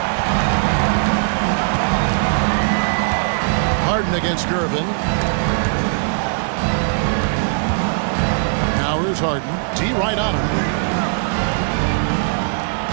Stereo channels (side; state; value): left; silent; 66 dB below the other